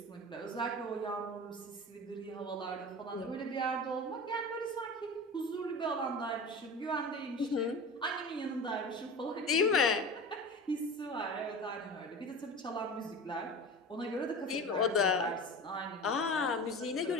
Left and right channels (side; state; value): both; normal; correlation 0.32